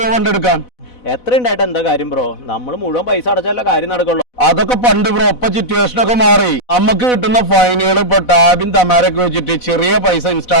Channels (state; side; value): late; right; 4.0 ms